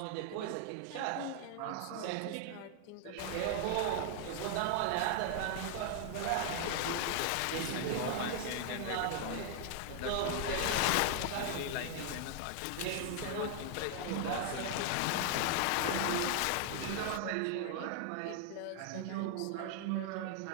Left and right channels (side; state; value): both; different; correlation 0.00